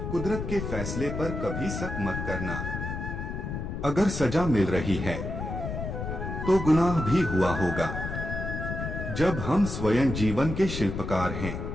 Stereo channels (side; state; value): left; noise; rumble, 5 dB below the sound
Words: कुदरत के फैसले पर कभी शक मत करना। अगर सजा मिल रही है तो गुनाह भी हुआ होगा। जब हम स्वयं जीवन के शिल्पकार हैं